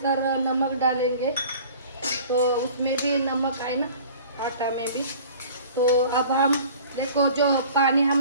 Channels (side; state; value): both; inverted; correlation -0.46